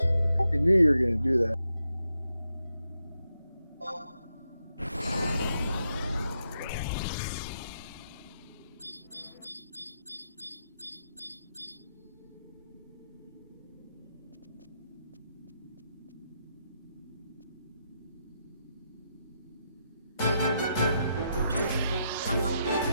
I knew you were going to do that.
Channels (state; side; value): inverted; both; correlation -0.82